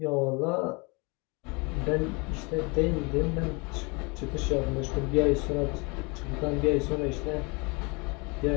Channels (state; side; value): quieter; right; 29.0 dB